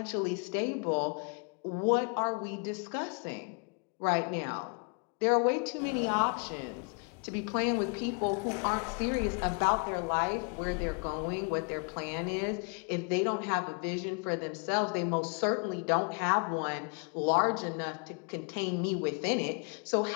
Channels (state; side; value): quieter; right; 38.0 dB